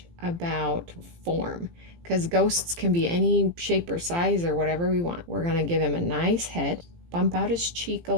about form, because ghosts can be any shape or size or whatever we want. We're gonna give him a nice head, bump out his cheek a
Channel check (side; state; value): left; late; 17 ms